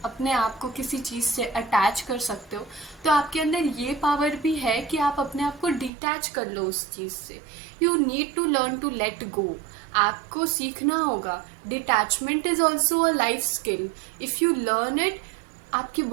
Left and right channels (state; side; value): drops out; left; at 5.9 s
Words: अपने आप को किसी चीज़ से अटैच कर सकते हो, तो आपके अंदर ये पावर भी है कि आप अपने आप को डिटैच कर लो उस चीज़ से। You need to learn to let go. आपको सीखना होगा। Detachment is also a life skill. If you learn it, आपकी